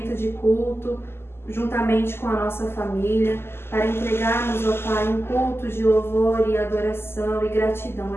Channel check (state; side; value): late; right; 0.12 ms